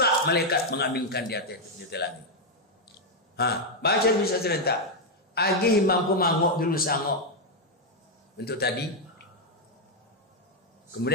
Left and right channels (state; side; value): normal; both; correlation 0.01